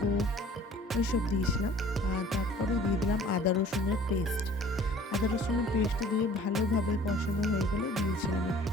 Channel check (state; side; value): normal; both; correlation 0.51